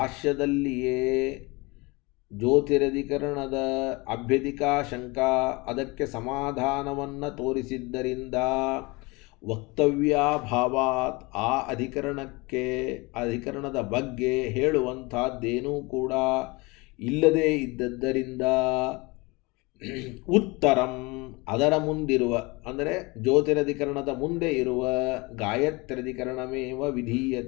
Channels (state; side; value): quieter; right; 25.6 dB